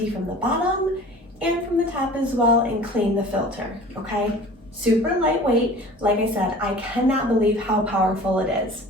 from the bottom and from the top as well and clean the filter, okay? Super lightweight. Like I said, I cannot believe how powerful it is.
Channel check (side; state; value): both; normal; correlation 0.43